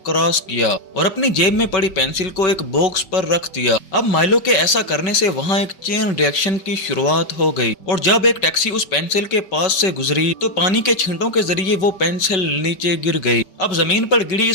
क्रॉस किया और अपनी जेब में पड़ी पेंसिल को एक बॉक्स पर रख दिया। अब माइलो के ऐसा करने से वहाँ एक चेन रिएक्शन की शुरुआत हो गई और जब एक टैक्सी उस पेंसिल के पास से गुजरी तो पानी के छींटों के जरिए वो पेंसिल नीचे गिर गई। अब जमीन पर गिरी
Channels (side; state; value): right; late; 5.3 ms